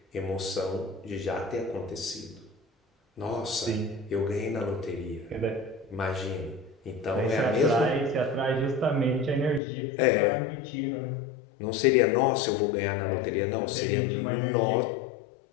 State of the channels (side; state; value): right; drops out; at 9.6 s